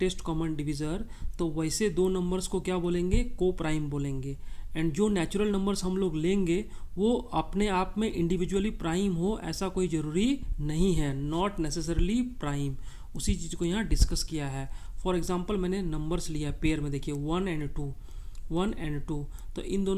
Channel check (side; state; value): both; identical; correlation 1.00